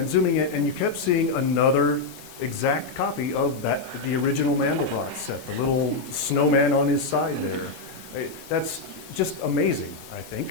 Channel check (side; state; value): right; quieter; 3.7 dB